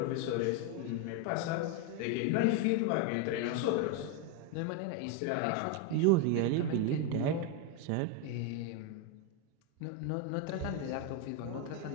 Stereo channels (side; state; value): both; different; correlation 0.02